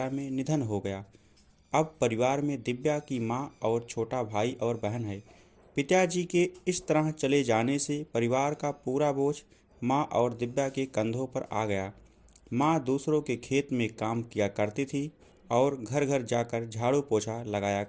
में निधन हो गया। अब परिवार में दिव्या की मां और छोटा भाई और बहन है। पिताजी के इस तरह चले जाने से परिवार का पूरा बोझ मां और दिव्या के कंधों पर आ गया। मां दूसरों के खेत में काम किया करती थी और घर घर जाकर झाड़ू पोछा लगाया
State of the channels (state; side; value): identical; both; correlation 1.00